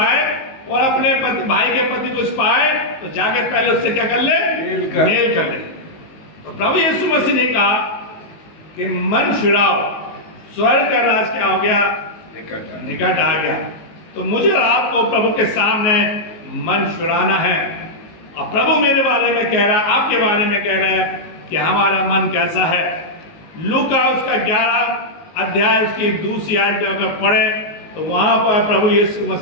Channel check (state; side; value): late; right; 19 ms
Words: और अपने भाई के पति को पाए, तो जाके पहले उससे क्या कर ले? मेल कर ले। तो प्रभु यीशु मसीह ने कहा कि मन फिराओ, स्वर्ग का राज क्या हो गया? निकट आ गया। तो मुझे और आपको प्रभु के सामने मन फिराना है। और प्रभु मेरे बारे में कह रहा है, आपके बारे में कह रहा है कि हमारा मन कैसा है। लूका उसका 11 अध्याय उसकी 2 आयत में अगर पढ़े, तो वहां पर प्रभु यीशु